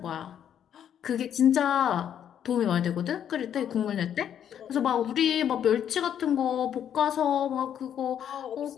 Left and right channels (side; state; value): right; quieter; 9.4 dB